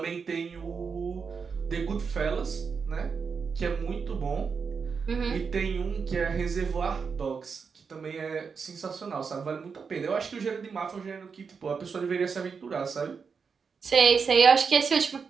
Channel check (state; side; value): quieter; left; 5.7 dB